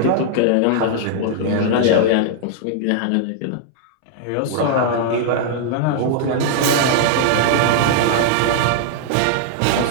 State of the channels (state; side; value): different; both; correlation -0.01